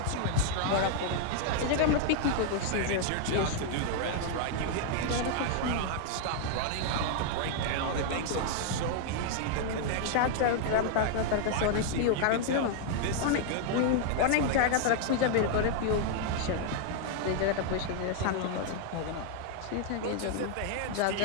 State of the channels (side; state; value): both; different; correlation 0.00